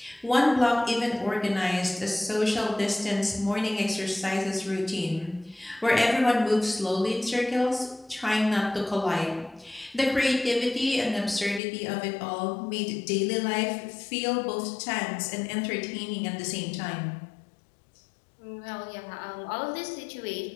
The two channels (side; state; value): right; drops out; at 11.6 s